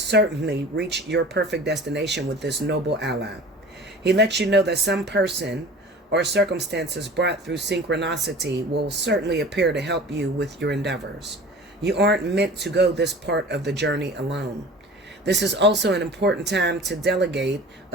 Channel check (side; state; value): both; normal; correlation 0.41